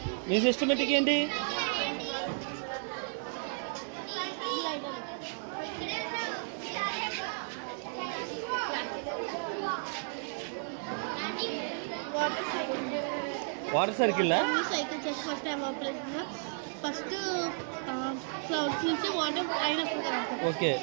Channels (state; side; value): silent; left; 56 dB below the other